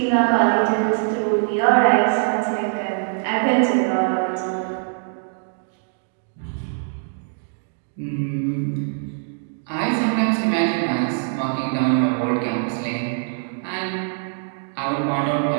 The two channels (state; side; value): silent; left; digital silence